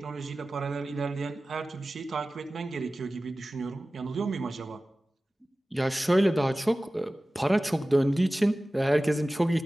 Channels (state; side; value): normal; both; correlation 0.96